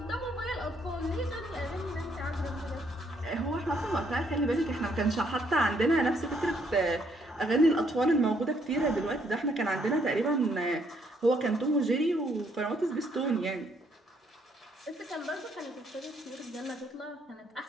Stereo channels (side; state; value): both; normal; correlation 0.70